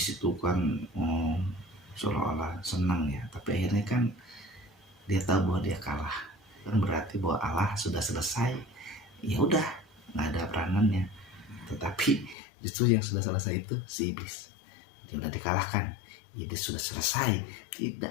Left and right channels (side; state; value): right; drops out; at 12.4 s